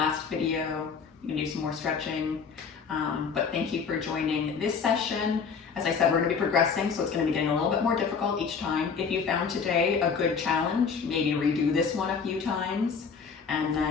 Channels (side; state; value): right; quieter; 5.9 dB